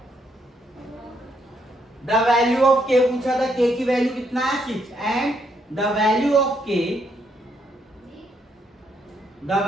the value of k पूछा था, k की वैल्यू कितना है 6 and the value of k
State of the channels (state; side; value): normal; both; correlation 0.74